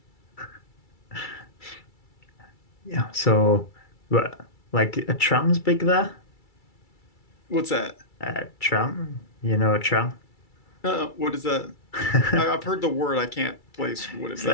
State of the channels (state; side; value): late; right; 2.3 ms